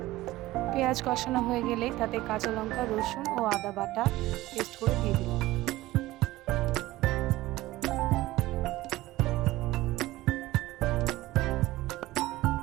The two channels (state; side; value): quieter; left; 17.4 dB